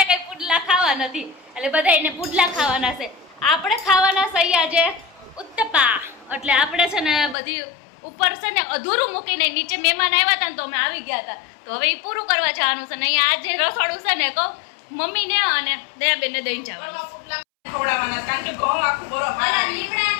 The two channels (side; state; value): right; drops out; at 7.4 s